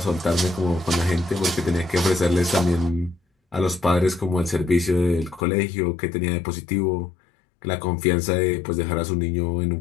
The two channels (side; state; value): right; drops out; at 5.5 s